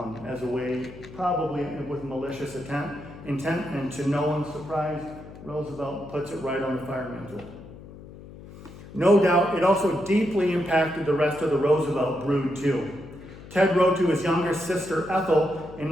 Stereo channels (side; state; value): left; noise; hum, 16 dB below the sound